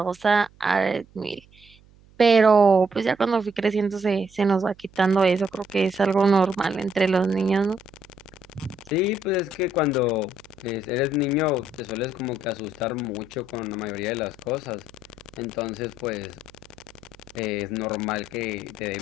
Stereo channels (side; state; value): right; noise; hum, 27 dB below the sound